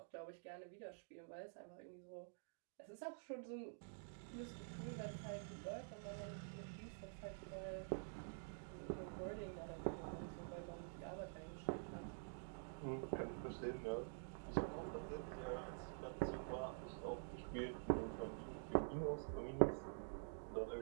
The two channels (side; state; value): left; silent; digital silence